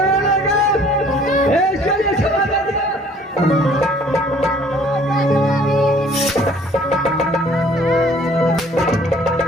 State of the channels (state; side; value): normal; both; correlation 0.56